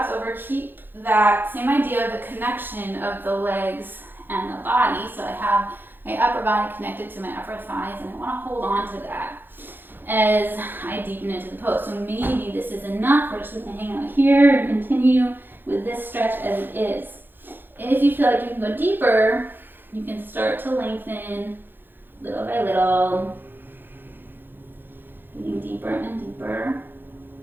over, keep that same idea of the connection of the legs and the body. So I have my upper body connected to my upper thighs, and I want to hold on to that as I deepen into the pose. So maybe this is enough. We're just going to hang out here and continue with this stretch as it is. If you feel like you can go deeper, you can start to lengthen little by little, getting deeper and deeper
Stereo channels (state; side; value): late; left; 0.097 ms